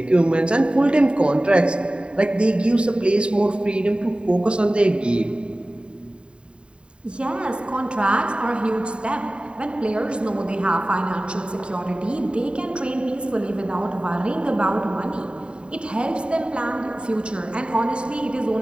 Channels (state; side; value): late; left; 0.053 ms